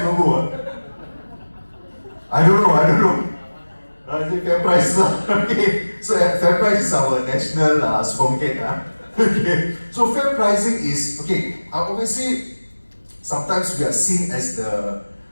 logo. I don't know. I think fair price. Okay. So fair price is our national supermarket. Okay. So fair pricing is, obviously, sometimes we are seen as the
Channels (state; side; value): inverted; both; correlation -1.00